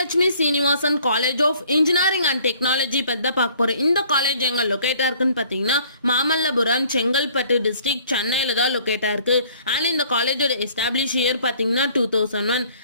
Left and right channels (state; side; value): inverted; both; correlation -0.57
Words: Srinivasan college of engineering and technology பற்றி தான் பார்க்க போகிறோம். இந்த காலேஜ் எங்கே லொக்கேட்டாக இருக்குன்னு பார்த்தீங்கன்னா மாமல்லபுரம், செங்கல்பட்டு டிஸ்ட்ரிக்ட், சென்னையில் தான் லொக்கேட்டாக இருக்குது. அண்ட் இந்த காலேஜோட எஸ்டாப்ளிஷ் இயர் பார்த்தீங்கன்னா 2001.